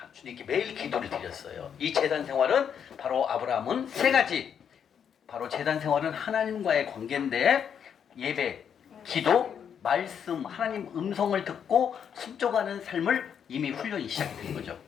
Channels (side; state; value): right; quieter; 8.0 dB